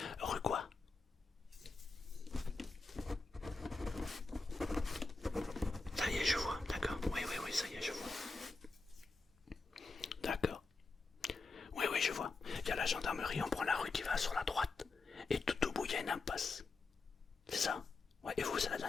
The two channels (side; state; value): right; quieter; 3.8 dB